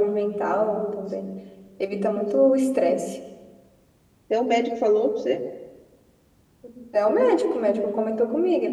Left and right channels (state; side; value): identical; both; correlation 1.00